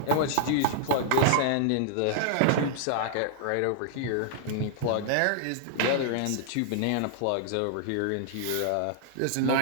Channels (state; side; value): different; both; correlation -0.01